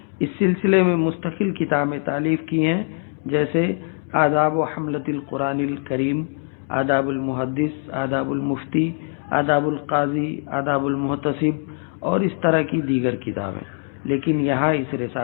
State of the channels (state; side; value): silent; right; 57 dB below the other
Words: اس سلسلے میں مستقل کتابیں تالیف کی ہیں، جیسے آداب و حملت القرآن الکریم، آداب المحدث، آداب المفتی، آداب القاضی، آداب المحتسب اور اس طرح کی دیگر کتابیں۔ لیکن یہاں اس